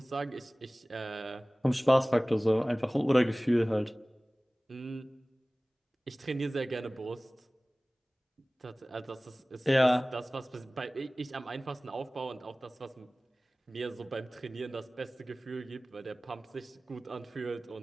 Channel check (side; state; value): both; normal; correlation 0.98